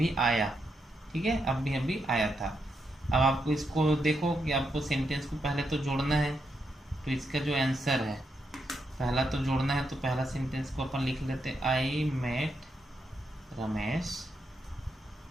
आया, ठीक है, अभी आया था। अब आपको इसको देखो कि आपको सेंटेंस को पहले तो जोड़ना है, तो इसका जो आंसर है पहला तो जोड़ना है, तो पहला सेंटेंस को अपन लिख लेते हैं आई मेट रमेश,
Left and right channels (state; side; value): normal; both; correlation 0.82